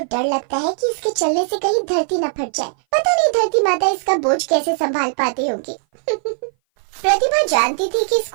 डर लगता है कि इसके चलने से कहीं धरती न फट जाए। पता नहीं धरती माता इसका बोझ कैसे संभाल पाती होगी। प्रतिभा जानती थी कि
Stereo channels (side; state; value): left; silent; 58 dB below the other